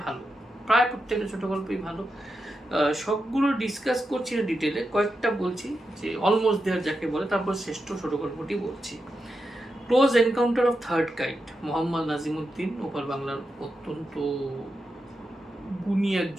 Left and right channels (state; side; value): normal; both; correlation 0.88